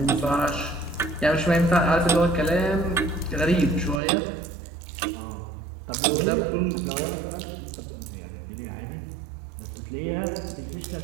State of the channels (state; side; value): drops out; left; at 4.0 s